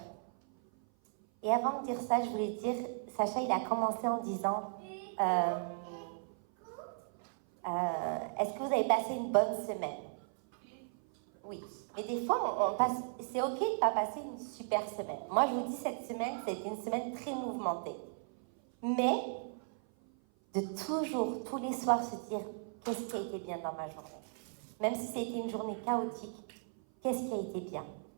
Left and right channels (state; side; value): silent; left; 54 dB below the other